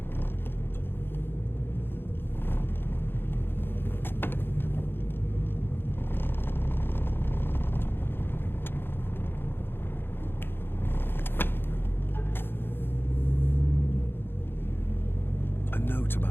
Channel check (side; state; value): right; late; 0.10 ms